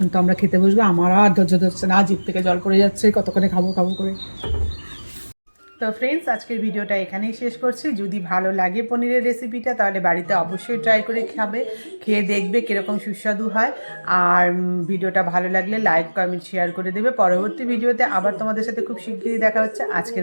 তো আমরা খেতে বসবো, আমার আর ধৈর্য ধরছে না, জিভ থেকে জল পড়ে যাচ্ছে, কতক্ষণে খাবো খাবো করে। তো ফ্রেন্ডস, আজকের ভিডিওটা এখানেই শেষ করছি। যদি ভালো লাগে পনিরের রেসিপিটা, তাহলে বাড়িতে অবশ্যই ট্রাই করে খাবে, খেয়ে দেখবে কীরকম সুস্বাদু হয়। আর ভিডিওটা ভালো লাগলে লাইক কমেন্ট শেয়ার করে দেবে। পরবর্তী ভিডিওতে আবার তোমাদের সাথে খুব শিগগিরই দেখা হচ্ছে।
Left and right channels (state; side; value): inverted; both; correlation -1.00